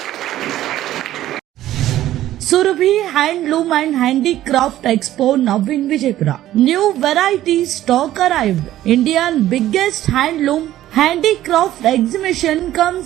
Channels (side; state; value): left; quieter; 13.6 dB